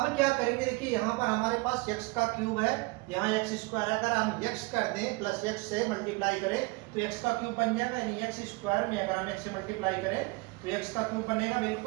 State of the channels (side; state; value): left; quieter; 25.4 dB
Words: क्या करेंगे, देखिए यहाँ पर हमारे पास x का क्यूब है, यहाँ x स्क्वायर है। अगर हम x कर दें प्लस x से मल्टीप्लाई करें तो x का क्यूब बन जाएगा, यानी x स्क्वायर में अगर हम x से मल्टीप्लाई करें तो x का क्यूब बनेगा।